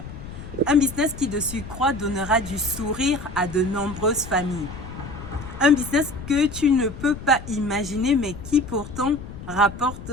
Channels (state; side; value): noise; left; rumble, 12 dB below the sound